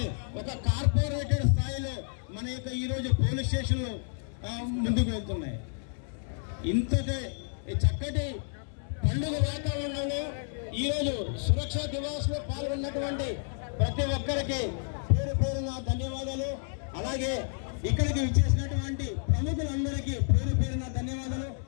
ఒక కార్పొరేటెడ్ స్థాయిలో మన యొక్క ఈరోజు పోలీస్ స్టేషన్లు ముందుకు వెళ్తున్నాయి. ఇంతటి చక్కటి పండుగ వాతావరణంలో ఈరోజు సురక్షా దివాస్ లో పాల్గొన్నటువంటి ప్రతి ఒక్కరికి పేరు పేరున ధన్యవాదాలు. అలాగే ఇక్కడికి విచ్చేసినటువంటి ప్రముఖులందరికీ పేరు పేరున ధన్యవాదాలు.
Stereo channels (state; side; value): silent; right; digital silence